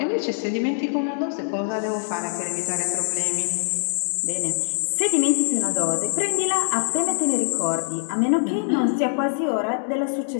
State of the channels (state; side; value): silent; right; digital silence